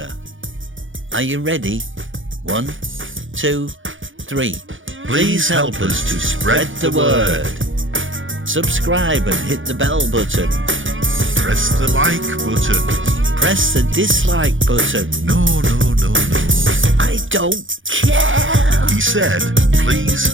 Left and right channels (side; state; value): left; late; 0.57 ms